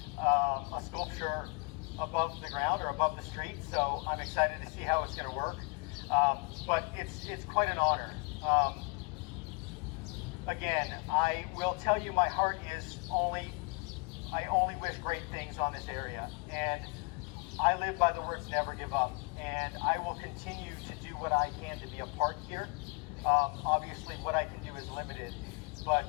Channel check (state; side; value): quieter; right; 32.2 dB